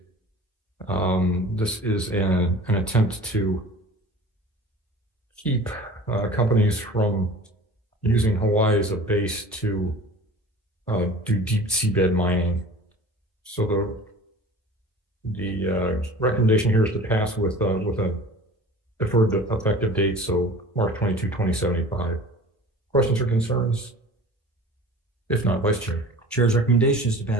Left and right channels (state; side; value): normal; both; correlation 0.41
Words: This is an attempt to keep companies from using Hawaii as a base to do deep seabed mining. So the recommendation here is to pass with a deferred effective date, so March 22, 2075. Questions or concerns? If not, Vice Chair. Chair's recommendation is to